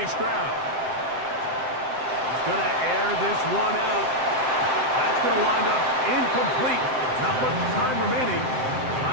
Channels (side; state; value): left; late; 7.7 ms